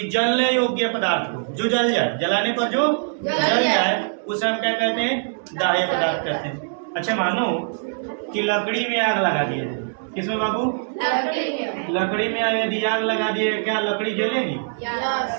जलने योग्य पदार्थ को जो जल जाए, जलाने पर जो जल जाए उसे हम क्या कहते हैं? दाह्य पदार्थ कहते हैं। अच्छा मानो कि लकड़ी में आग लगा दिए। किसमें बाबू? लकड़ी में यदि आग लगा दिए, क्या लकड़ी जलेगी?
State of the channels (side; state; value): left; silent; digital silence